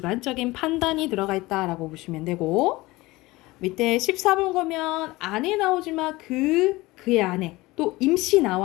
판단이 들어가 있다라고 보시면 되고 밑에 14번 보면 안에 나오지만 그의 안에 또 임시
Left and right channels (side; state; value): right; quieter; 20.5 dB